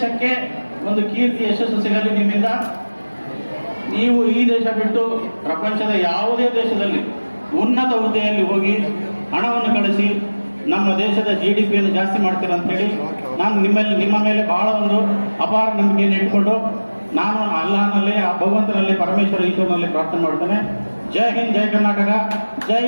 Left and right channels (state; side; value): inverted; both; correlation -1.00